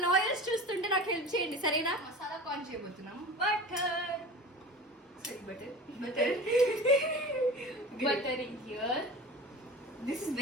లాయర్స్ చూస్తుంటే నాకు హెల్ప్ చేయండి, సరేనా? మసాలా కార్న్ చేయబోతున్నాం. Butter here. This is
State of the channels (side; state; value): both; normal; correlation 0.35